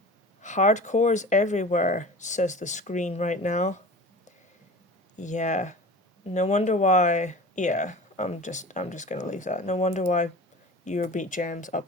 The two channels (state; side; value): normal; both; correlation 0.37